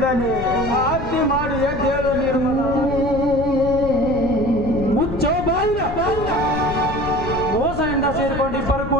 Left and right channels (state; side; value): noise; left; rumble, 8 dB below the sound